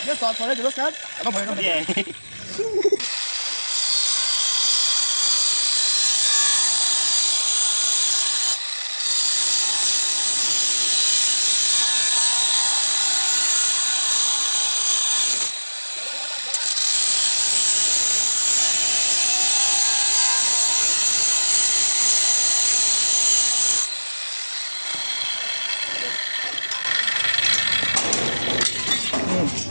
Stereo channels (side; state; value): both; inverted; correlation -1.00